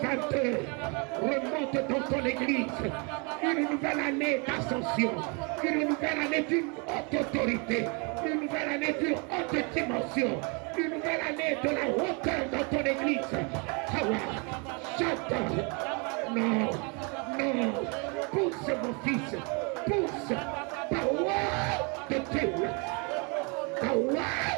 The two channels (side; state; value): left; quieter; 33.0 dB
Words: remonte dans ton église. Une nouvelle année d'ascension, une nouvelle année d'une haute autorité, une nouvelle année d'une haute dimension, une nouvelle année de la hauteur dans ton église. Chante. Non, pousse mon fils, pousse. Power de Dieu, power